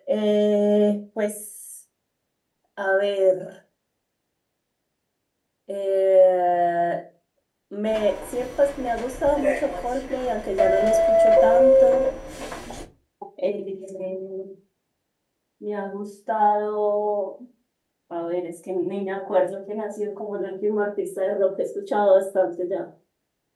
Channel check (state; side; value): identical; both; correlation 1.00